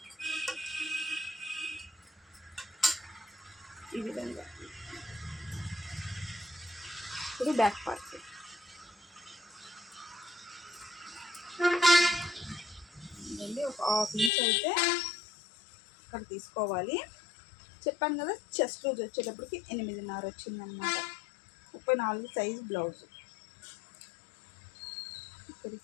ఈ విధంగా ఇప్పుడు బ్యాక్ పార్ట్ ఒక 1/2 ఇంచ్ అయితే ఇక్కడ తీసుకోవాలి. చెప్పాను కదా, చెస్ట్ లూజ్ వచ్చేటప్పటికి 8.5 వచ్చిందనమాట. 34 సైజ్ బ్లౌజ్.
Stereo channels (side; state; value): right; drops out; at 14.3 s